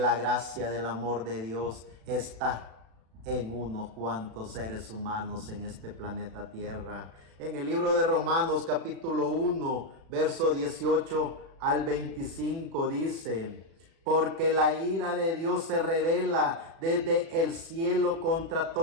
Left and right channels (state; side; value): late; left; 36 ms